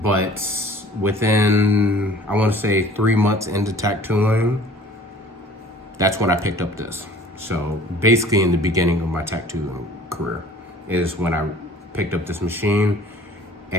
within, I want to say 3 months into tattooing, that's when I picked up this. So basically in the beginning of my tattoo career is when I picked up this machine,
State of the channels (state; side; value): normal; both; correlation 0.49